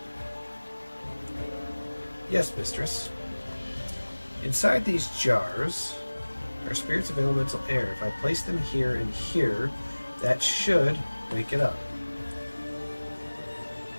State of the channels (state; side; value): inverted; both; correlation -1.00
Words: Yes, mistress. Inside these jars are spirits of elemental air. If I place them here and here, that should wake it up.